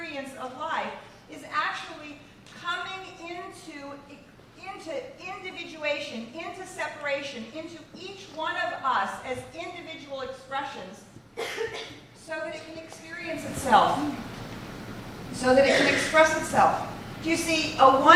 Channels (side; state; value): both; identical; correlation 1.00